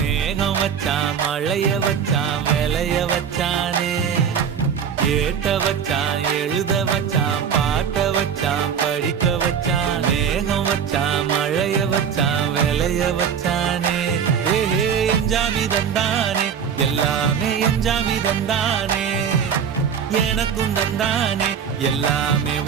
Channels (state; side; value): quieter; left; 7.5 dB